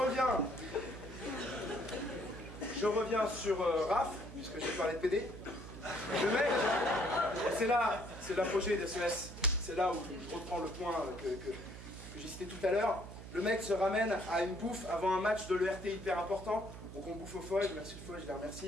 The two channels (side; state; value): right; noise; hum, 12 dB below the sound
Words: Je reviens sur Raph, puisque j'ai parlé de PD. Le mec, c'est l'apogée des SES. C'est là où je reprends le point que j'ai cité tout à l'heure. Le mec se ramène à une bouffe avant un match de l'ERT hyper important. Donc on bouffe au foie, merci le foie, je les